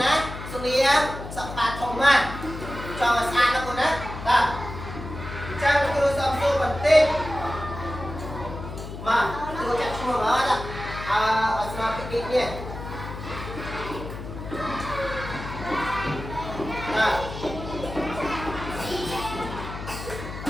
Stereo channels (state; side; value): noise; left; hum, 10 dB below the sound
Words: ណាសុនីសបាធំណាចង់ស្អាតណាគូណាបាទចាំគ្រូសំសួរបន្តិចមកគ្រូចាក់ឈ្មោះអត់អស្មារតីនេះបាទ